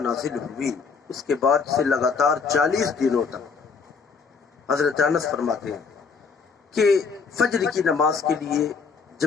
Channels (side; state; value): right; quieter; 5.3 dB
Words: ہوئی، اس کے بعد سے لگاتار 40 دنوں تک حضرت انس فرماتے ہیں کہ فجر کی نماز کے لیے